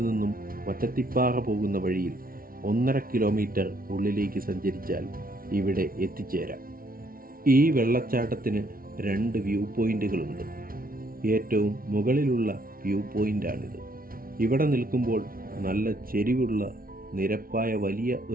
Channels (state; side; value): late; left; 0.42 ms